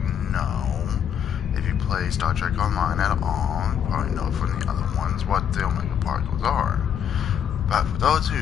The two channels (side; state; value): right; quieter; 8.6 dB